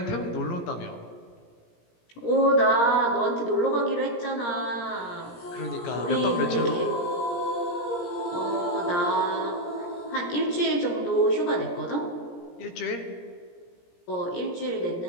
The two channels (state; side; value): late; right; 17 ms